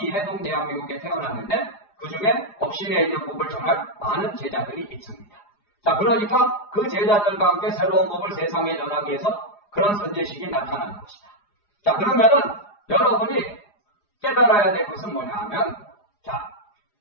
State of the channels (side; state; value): right; late; 4.9 ms